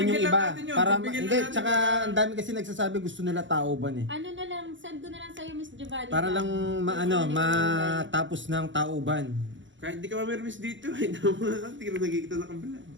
yung Pagbigyan lang iba. natin yun, Para pagbigyan lang hindi, natin. tsaka ang dami kasi nagsasabi gusto nila tauban eh. Ano na lang, send ko na lang sa'yo, Miss Giovanni. Para lang matapos ng tauban. Kahit di ka mamirmis dito, ay naman. Hindi ka na nagkikita na kabila.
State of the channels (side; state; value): left; late; 0.55 ms